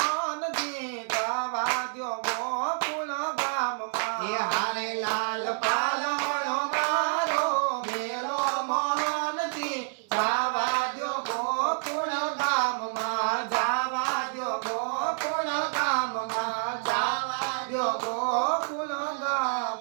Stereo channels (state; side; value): silent; left; digital silence